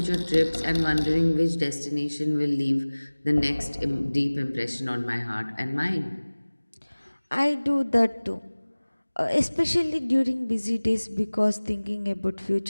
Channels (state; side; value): inverted; both; correlation -1.00